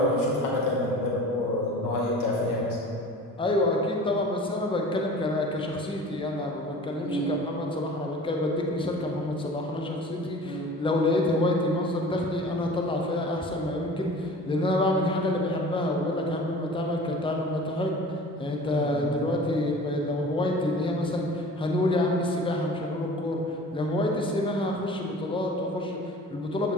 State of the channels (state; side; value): normal; both; correlation 0.41